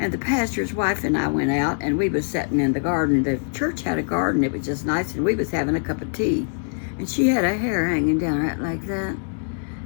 the pastor's wife and I went out, and we was sitting in the garden. The church had a garden. It was just nice, and we was having a cup of tea. And she had her hair hanging down right like that.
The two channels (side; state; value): right; silent; digital silence